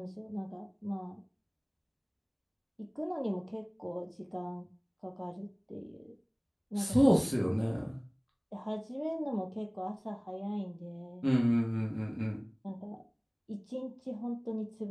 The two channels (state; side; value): identical; both; correlation 1.00